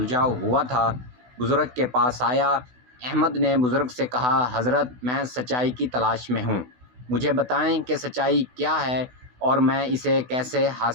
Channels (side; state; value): left; late; 16 ms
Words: ہوا تھا، بزرگ کے پاس آیا۔ احمد نے بزرگ سے کہا، حضرت، میں سچائی کی تلاش میں ہوں۔ مجھے بتائیں کہ سچائی کیا ہے اور میں اسے کیسے